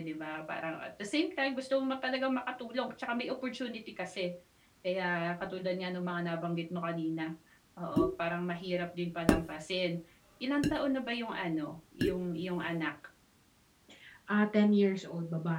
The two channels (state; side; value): identical; both; correlation 1.00